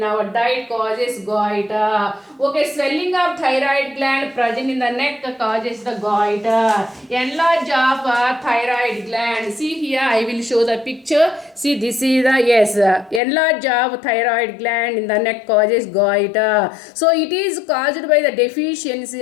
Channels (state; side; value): drops out; right; at 13.2 s